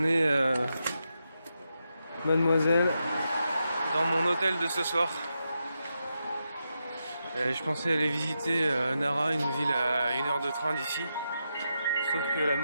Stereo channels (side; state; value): both; inverted; correlation -0.86